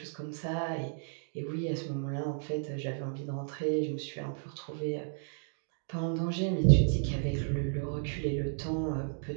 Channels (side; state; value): left; silent; digital silence